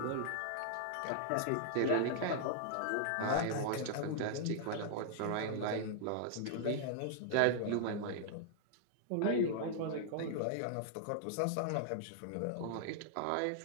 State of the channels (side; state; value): both; different; correlation -0.01